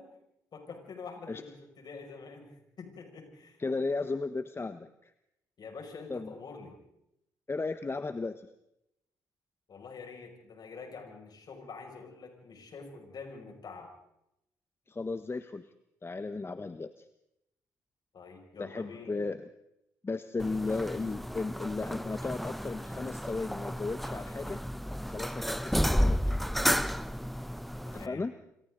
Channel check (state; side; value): normal; both; correlation 0.94